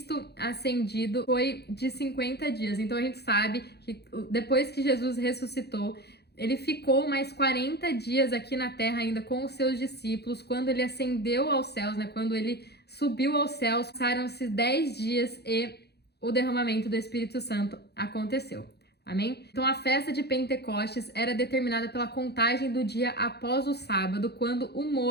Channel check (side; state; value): right; late; 0.48 ms